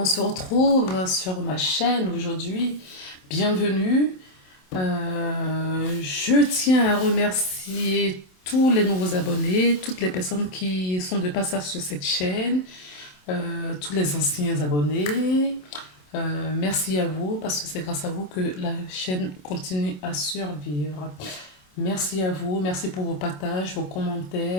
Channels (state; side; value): late; right; 27 ms